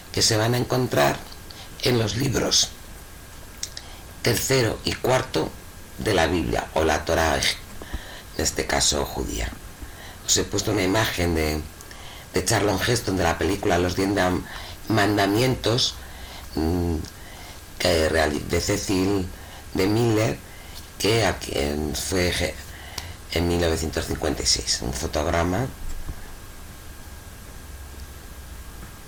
que se van a encontrar en los libros 3 y 4 de la Biblia, o la Torá, en este caso judía. Os he puesto una imagen de Charlton Heston, de la película Los 10 Mandamientos, de Cecil de Miller, que fue en 1956, un fotograma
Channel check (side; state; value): both; identical; correlation 1.00